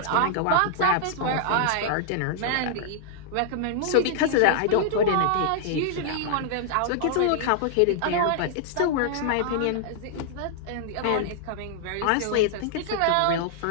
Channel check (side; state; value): both; different; correlation -0.01